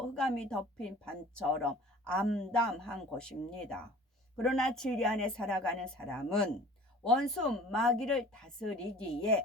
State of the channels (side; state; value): both; normal; correlation 0.46